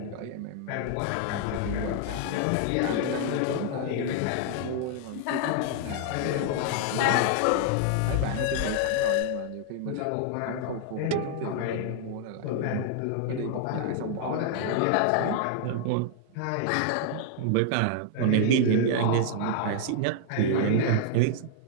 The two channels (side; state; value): both; different; correlation -0.01